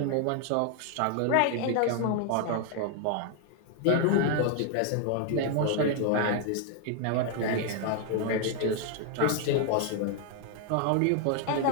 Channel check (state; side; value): different; both; correlation 0.00